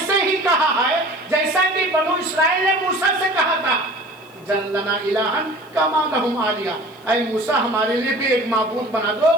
ہی کہا ہے جیسا کہ بنو اسرائیل نے موسیٰ سے کہا تھا جعل لنا الہن کما لہم آلیہ. اے موسیٰ ہمارے لیے بھی ایک معبود بنا دو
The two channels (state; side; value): noise; left; hiss, 29 dB below the sound